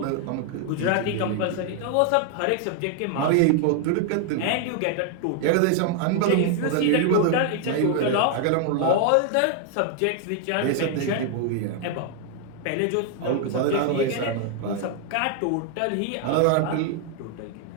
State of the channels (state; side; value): different; both; correlation 0.00